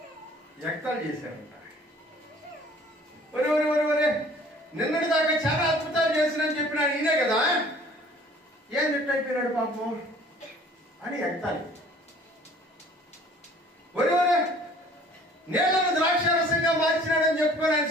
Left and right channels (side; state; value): both; normal; correlation 0.52